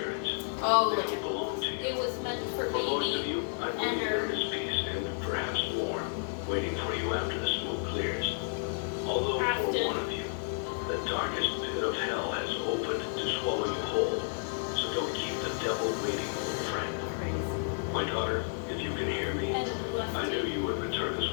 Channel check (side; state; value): right; silent; digital silence